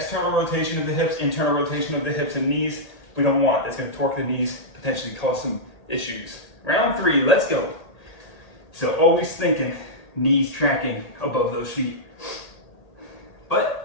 rotation of the hips, internal rotation of the hips and knees, we don't want. That's going to torque the knees, potentially cause some issues. Round 3, let's go. So always thinking knees tracking above those feet.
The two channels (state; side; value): late; right; 1.8 ms